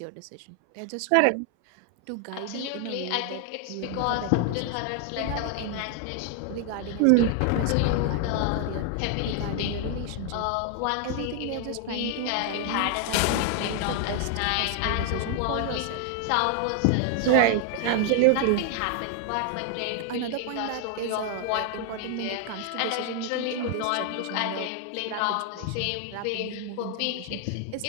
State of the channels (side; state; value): both; different; correlation 0.00